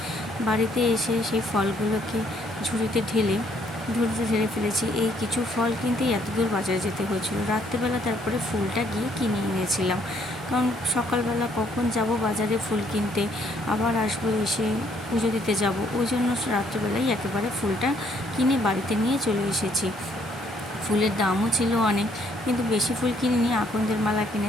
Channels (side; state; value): both; normal; correlation 0.67